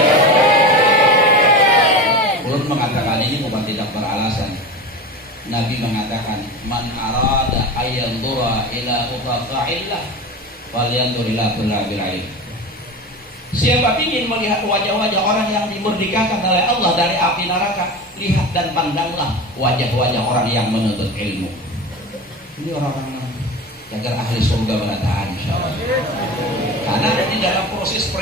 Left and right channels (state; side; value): normal; both; correlation 0.28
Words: Ulun mengatakan ini bukan tidak beralasan. Nabi mengatakan man arada ayyandura ila utaqa'illah falyandur ila kullabil ilm. Siapa ingin melihat wajah-wajah orang yang dimerdekakan oleh Allah dari api neraka, lihat dan pandanglah wajah-wajah orang yang menuntut ilmu. Ini orang-orang agar ahli surga berataan insyaallah. Karena di dalam proses